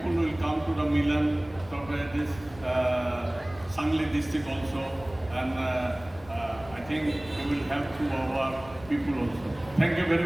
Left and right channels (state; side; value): noise; left; rumble, 20 dB below the sound